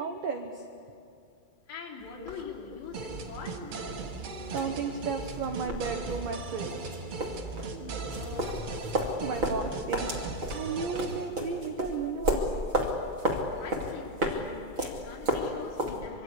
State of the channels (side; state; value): left; late; 2.3 ms